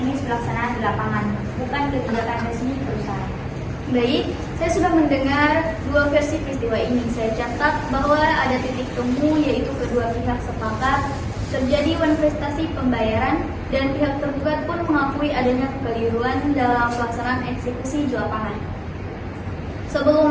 pelaksanaan di lapangan, bukan kebijakan resmi perusahaan. Baik, saya sudah mendengar dua versi peristiwa ini. Saya catat bahwa ada titik temu, yaitu kedua pihak sepakat terjadi manifestasi pembayaran dan pihak tergugat pun mengakui adanya kekeliruan dalam pelaksanaan eksekusi di lapangan.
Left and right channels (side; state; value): both; identical; correlation 1.00